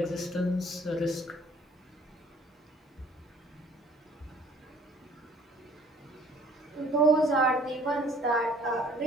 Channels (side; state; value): both; normal; correlation 0.55